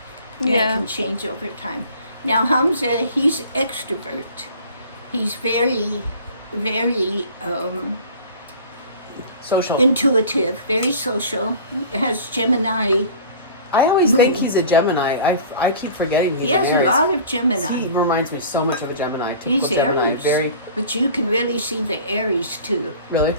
That Yeah. can change over time. Now, Hamza, he's extrovert. He's very, very Social. intuitive, very social. Has Gemini. I always think Moon. he's a Gemini. I keep forgetting he's He has an a Aries. lot of Gemini. He reminds me so much of a Gemini. He's Typical Gemini. Aries. Very, But you can really see the Aries too. really.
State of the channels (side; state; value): both; inverted; correlation -0.43